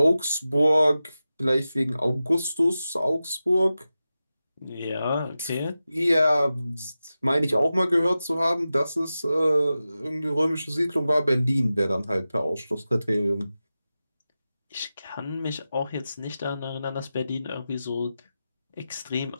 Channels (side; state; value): both; inverted; correlation -0.93